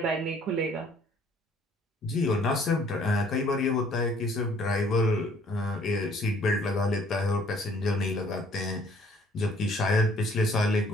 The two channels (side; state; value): both; normal; correlation 0.59